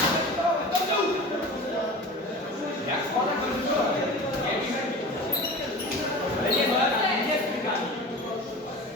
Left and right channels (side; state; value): both; normal; correlation 0.35